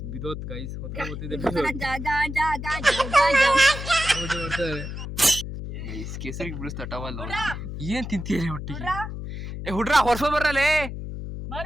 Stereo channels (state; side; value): noise; left; hum, 7 dB below the sound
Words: ಬಿದೋತ್ ಗೈಸ್ ಹೊತ್ಕೋತಿದ್ದೆ ಗೈಸ್ ಕೇಸರಿಗೆ ಬಿಡಿಸ್ತಾ ಟವಲ್. ಏನ್ ತಿಂತೀರಿ ಒಟ್ಟಿಗೆ? ಹುಡ್ರ ಹೊರ್ಸೋ ಬರ್ರಲೇ